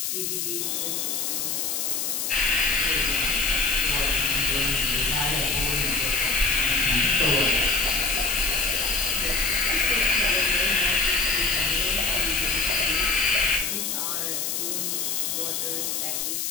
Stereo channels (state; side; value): noise; left; hiss, 1 dB below the sound